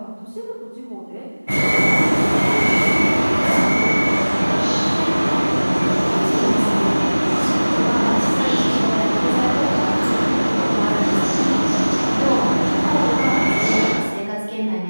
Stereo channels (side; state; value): both; inverted; correlation -1.00